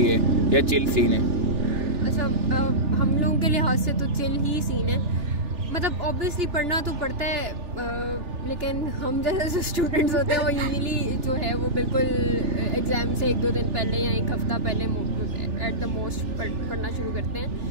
है या चिल सीन है? अच्छा, हम लोगों के लिहाज से तो चिल ही सीन है। मतलब ऑब्वियसली पढ़ना तो पड़ता है, लेकिन हम जैसे स्टूडेंट्स होते हैं वो यूजुअली जो है वो बिल्कुल एग्ज़ाम से 1-2 दिन पहले या 1 हफ्ता पहले एट द मोस्ट पढ़ना शुरू करते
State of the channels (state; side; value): late; left; 3.4 ms